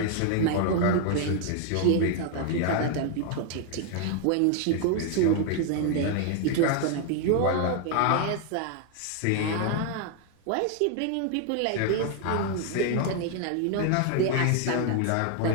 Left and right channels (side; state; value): both; different; correlation 0.00